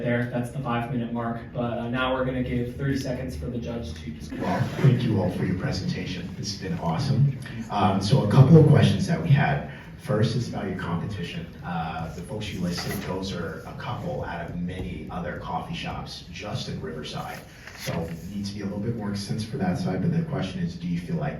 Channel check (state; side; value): identical; both; correlation 1.00